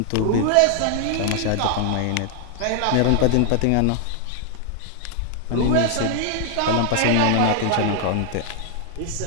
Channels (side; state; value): both; different; correlation 0.00